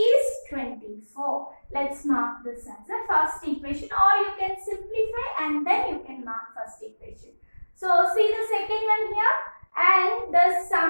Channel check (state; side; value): inverted; both; correlation -1.00